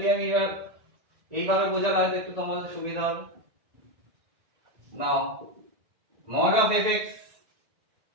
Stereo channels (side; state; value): left; late; 1.9 ms